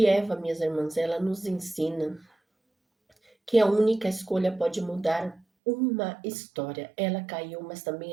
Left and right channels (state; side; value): drops out; left; at 5.4 s